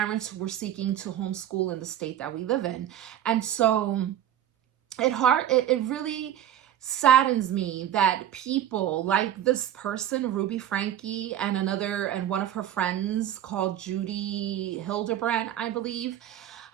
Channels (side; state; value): left; quieter; 11.1 dB